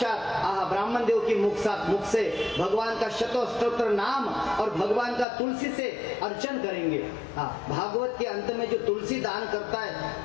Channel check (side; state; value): right; drops out; at 5.2 s